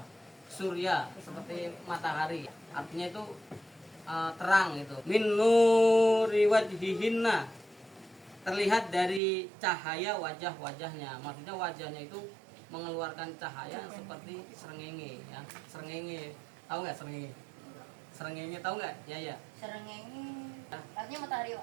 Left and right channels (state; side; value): drops out; left; at 9.2 s